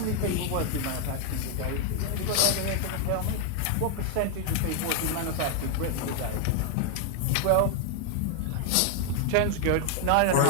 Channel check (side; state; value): both; different; correlation 0.00